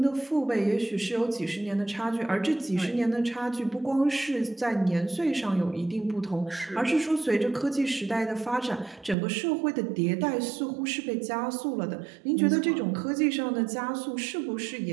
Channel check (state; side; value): drops out; left; at 9.2 s